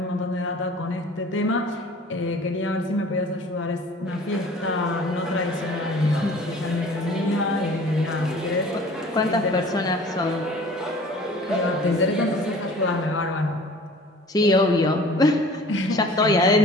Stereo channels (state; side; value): normal; both; correlation 0.47